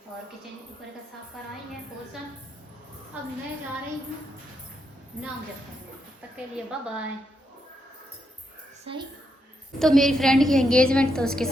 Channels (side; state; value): both; normal; correlation 0.81